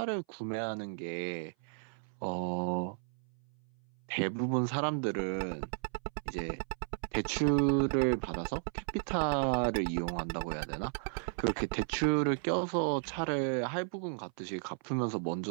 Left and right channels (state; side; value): silent; left; 55 dB below the other